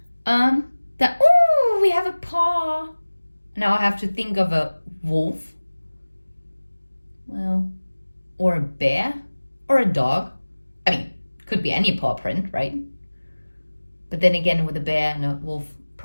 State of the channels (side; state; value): both; inverted; correlation -1.00